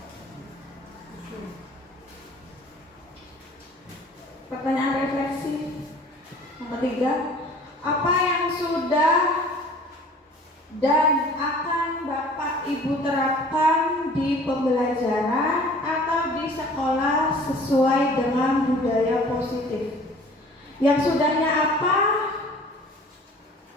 Pertanyaan refleksi yang ketiga, apa yang sudah dan akan Bapak Ibu terapkan di pembelajaran atau di sekolah sesuai dengan budaya positif? Yang sudahnya apa?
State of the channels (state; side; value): normal; both; correlation 0.48